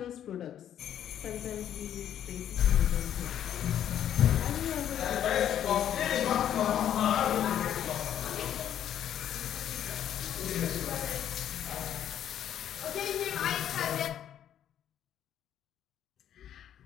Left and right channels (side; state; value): right; quieter; 10.3 dB